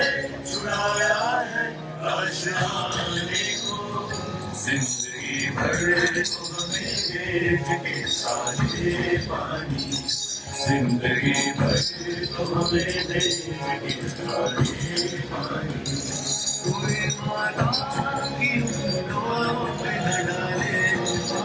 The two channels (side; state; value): both; identical; correlation 1.00